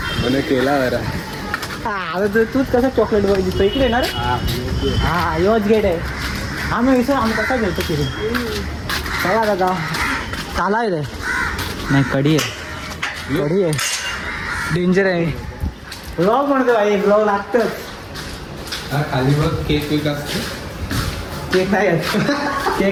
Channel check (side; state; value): both; identical; correlation 1.00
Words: म्हणे केला बरं. आता तूच कसं चॉकलेट बॉय दिसतो इकडे येणार. हा, योच गेट आहे. आम्ही विसर आम्ही कसा घेतो फिरून. चला दादा, चाला आहे नाही, कडी आहे, कडी आहे, डेंजर आहे. ब्लॉग म्हणतो भाई, ब्लॉग लागतच. खाली बघ केक वेक असतो. केक नाही आहे,